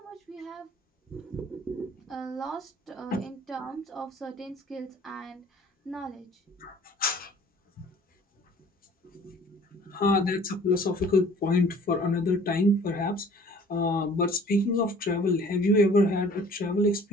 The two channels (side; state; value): both; normal; correlation 0.51